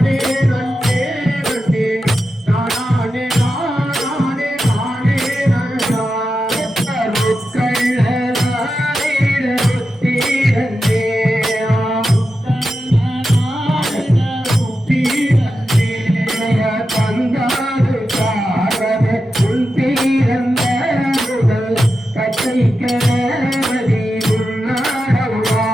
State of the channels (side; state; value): both; normal; correlation 0.90